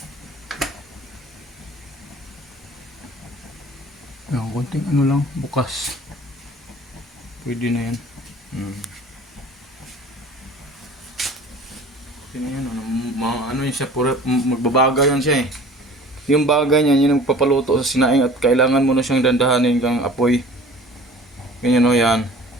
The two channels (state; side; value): normal; both; correlation 0.45